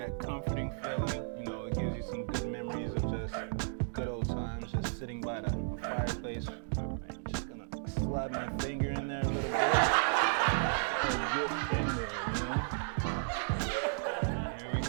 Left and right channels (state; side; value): silent; left; digital silence